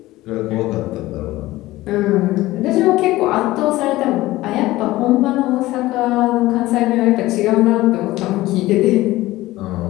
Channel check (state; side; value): quieter; right; 17.5 dB